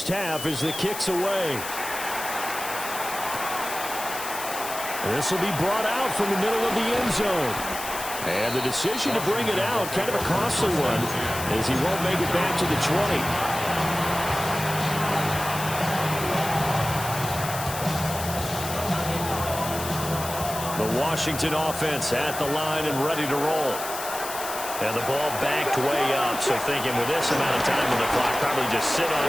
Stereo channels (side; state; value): left; noise; hiss, 8 dB below the sound